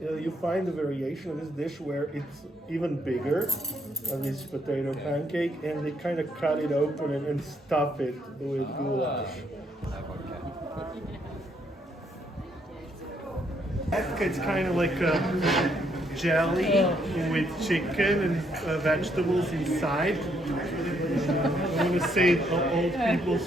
find a variation of this dish where it's even bigger, this potato pancake, and they kind of cut it open and stuff it with goulash. It's kind of like a jelly with chicken and vegetables inside. I want to say old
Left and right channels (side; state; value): both; normal; correlation 0.72